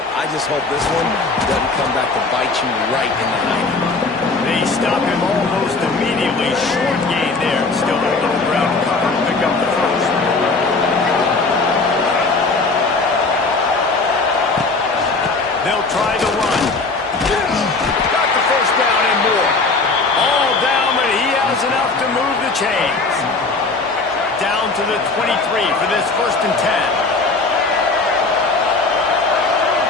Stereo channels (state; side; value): quieter; right; 3.7 dB